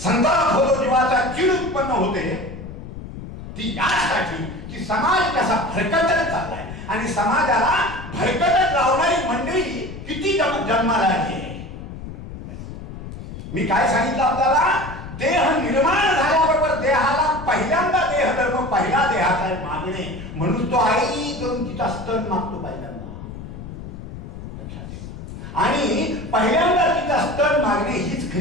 जीवाचा चीड उत्पन्न होते ती यासाठी की समाज कसा भरकटत चाललाय, आणि समाजाला भरकटत लावणारी मंडळी किती जन्माला आली. मी काय सांगितलं आपल्याला, देह निर्माण झाल्याबरोबर देहाला पहिल्यांदा देह धर्म, पहिला देहाचा मागणे, म्हणून तो आई करून तिचा स्तन मागतो पहिल्यांदा. आणि पहिल्यांदा तिचा स्तन मागणे हीच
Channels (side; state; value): left; noise; rumble, 11 dB below the sound